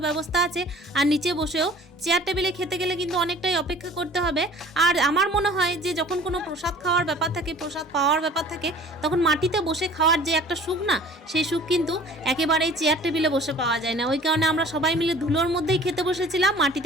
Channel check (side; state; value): both; normal; correlation 0.48